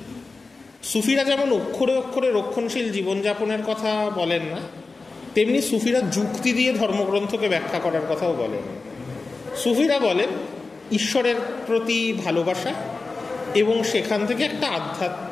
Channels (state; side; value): quieter; right; 3.8 dB